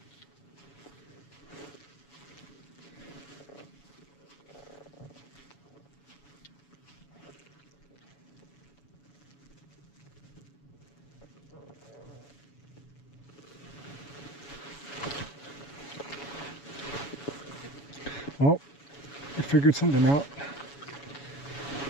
Oh, I figured something out.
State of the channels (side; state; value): right; late; 7.1 ms